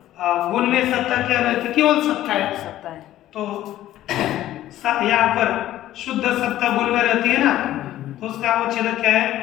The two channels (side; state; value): right; quieter; 13.7 dB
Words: गुण में सत्ता क्या रहती? केवल सत्ता है, तो यहाँ पर शुद्ध सत्ता गुण में रहती है ना, तो उसका अवच्छेदक क्या है?